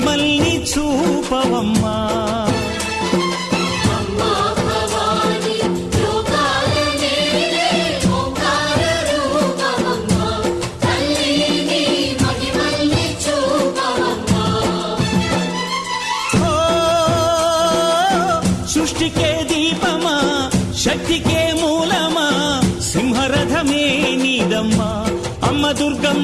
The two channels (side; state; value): both; identical; correlation 1.00